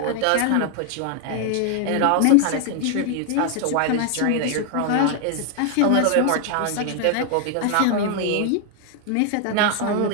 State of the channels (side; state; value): both; different; correlation 0.00